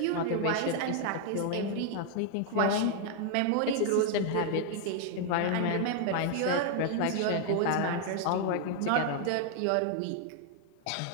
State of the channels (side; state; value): both; different; correlation 0.00